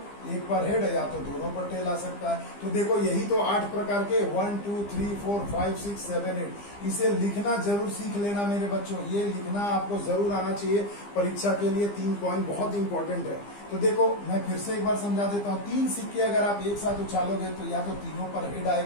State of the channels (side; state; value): right; late; 15 ms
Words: एक पर हेड या तो दोनों पर टेल आ सकता है। तो देखो यही तो 8 प्रकार के 1 2 3 4 5 6 7 8, इसे लिखना जरूर सीख लेना मेरे बच्चों, ये लिखना आपको जरूर आना चाहिए परीक्षा के लिए। 3 पॉइंट बहुत इंपॉर्टेंट है। तो देखो मैं फिर से एक बार समझा देता हूँ, 3 सिक्के अगर आप एक साथ उछालोगे तो या तो तीनों पर हेड